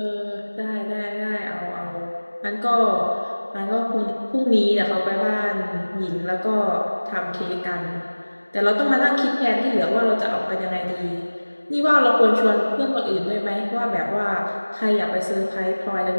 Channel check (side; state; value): both; inverted; correlation -1.00